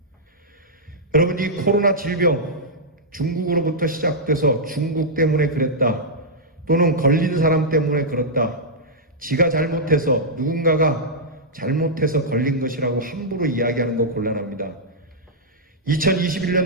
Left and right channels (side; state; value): both; normal; correlation -0.08